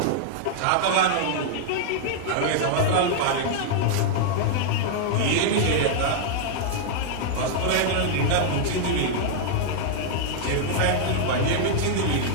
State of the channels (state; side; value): different; both; correlation -0.01